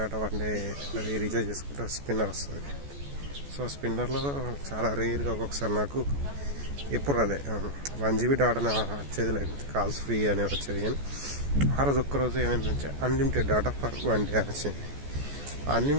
వన్ డే అది రీఛార్జ్ చేసుకుంటే స్పిన్నర్ వస్తుంది. సో స్పిన్నర్లో చాలా రేర్గా ఒక్కొక్కసారి నాకు ఎప్పుడు అదే 1 GB డాటా వచ్చేది, లేకపోతే కాల్స్ ఫ్రీ అనేది వచ్చేది. కానీ ఆ రోజు ఒక్కరోజు ఏమైందంటే అన్లిమిటెడ్ డాటా ఫర్ 1 డే వచ్చింది.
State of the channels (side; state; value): left; late; 14 ms